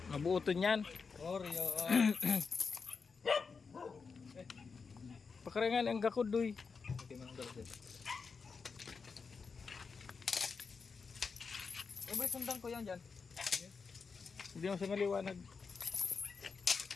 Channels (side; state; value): right; quieter; 5.1 dB